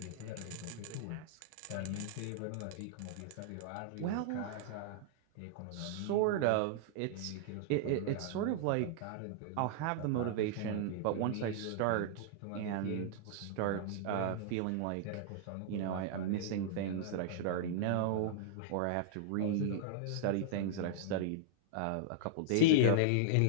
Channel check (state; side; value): different; both; correlation -0.01